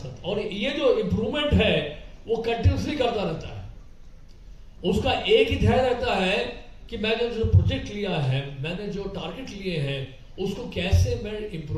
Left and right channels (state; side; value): identical; both; correlation 1.00